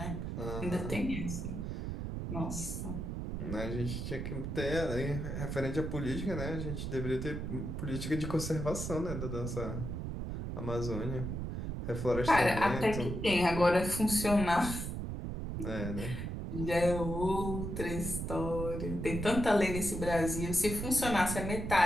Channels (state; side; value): noise; right; rumble, 4 dB below the sound